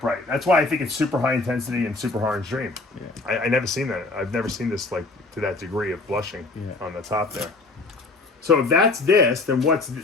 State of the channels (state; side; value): quieter; right; 3.3 dB